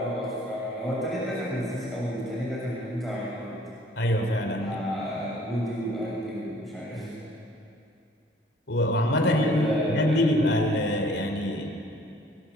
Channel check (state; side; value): normal; both; correlation 0.56